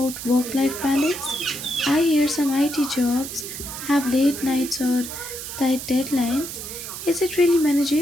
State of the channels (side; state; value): right; noise; hiss, 9 dB below the sound